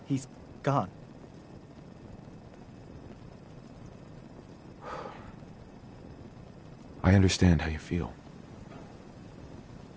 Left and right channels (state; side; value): identical; both; correlation 1.00